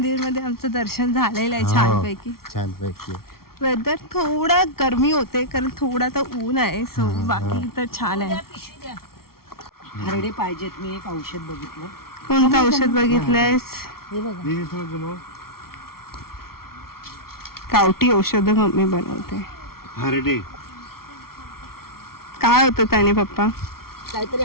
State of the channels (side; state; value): right; late; 0.94 ms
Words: मध्ये आमचं दर्शन झालेलं आहे छानपैकी. वेदर थोडा गरमी होते कारण थोडा तर ऊन आहे. सो बाकी तर छान आहे. हरडे पाहिजेत. मी एक औषध बघितलं. कोणतं औषध बघितलंयस? हे बघा. गावठी औषध मम्मी बनवते. हरडे काय होतं त्याने पप्पा? काहीतरी